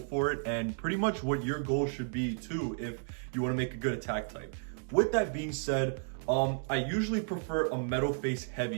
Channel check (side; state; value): left; silent; digital silence